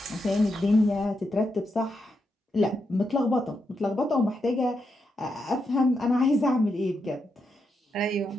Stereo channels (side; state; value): both; normal; correlation 0.83